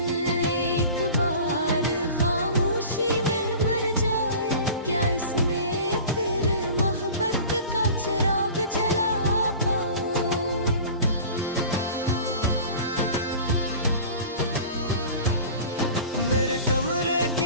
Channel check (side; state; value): both; inverted; correlation -0.40